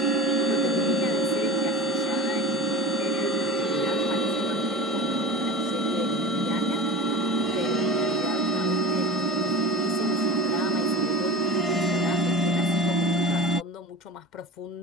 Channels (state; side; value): normal; both; correlation 0.31